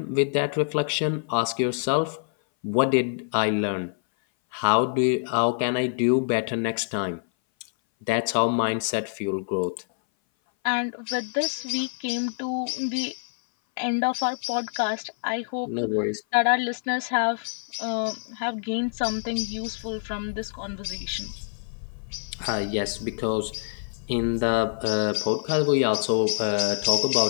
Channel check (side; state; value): right; silent; 58 dB below the other